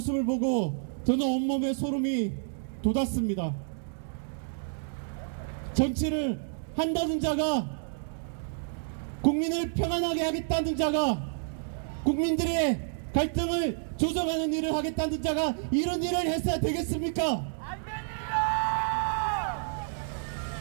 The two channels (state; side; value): silent; left; digital silence